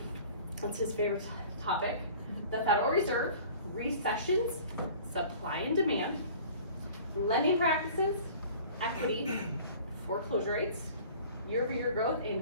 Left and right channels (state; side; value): inverted; both; correlation -0.46